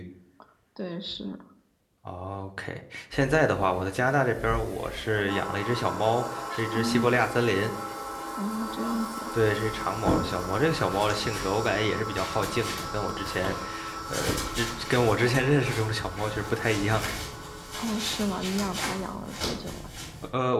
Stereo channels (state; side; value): identical; both; correlation 1.00